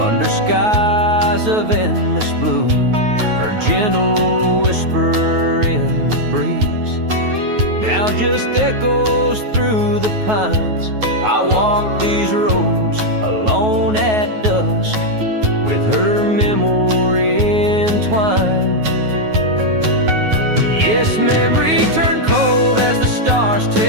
skies of endless blue. Her gentle whisper in the breeze now just echoes through the pines. I walk these roads alone at dusk, with her memory entwined. Yes, memory turned cold as the stars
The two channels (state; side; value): late; left; 9.4 ms